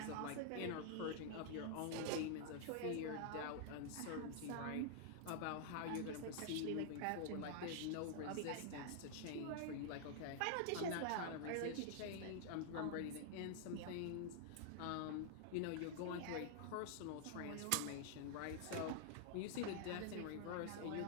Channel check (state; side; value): different; both; correlation -0.01